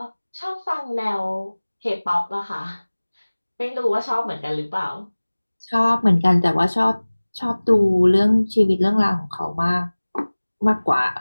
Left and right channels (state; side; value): inverted; both; correlation -1.00